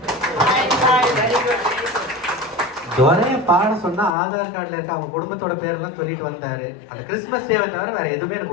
துரைய பாட சொன்னா ஆதார் கார்டுல இருக்க அவங்க குடும்பத்தோட பேரெல்லாம் சொல்லிட்டு வந்தாரு. அந்த கிறிஸ்துமஸ் டேவை தவிர வேற எதுவுமே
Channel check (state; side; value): drops out; right; at 4.1 s